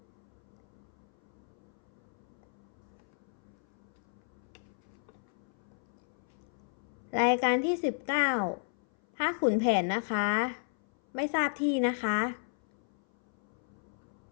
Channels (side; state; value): right; silent; 55 dB below the other